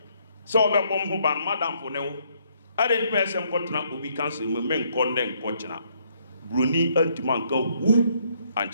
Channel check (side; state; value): both; inverted; correlation -0.69